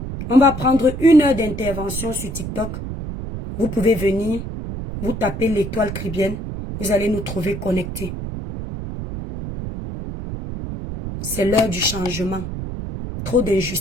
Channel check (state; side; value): noise; right; rumble, 7 dB below the sound